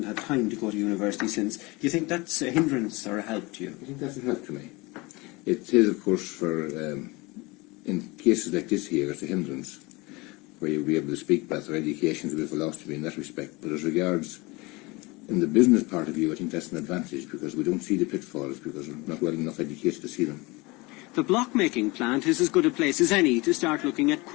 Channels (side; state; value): right; quieter; 24.4 dB